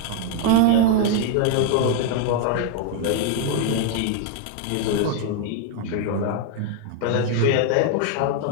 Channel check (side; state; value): both; different; correlation 0.00